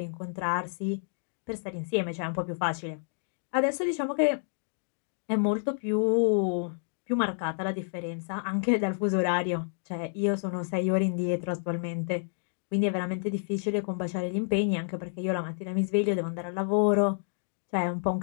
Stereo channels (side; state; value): right; silent; digital silence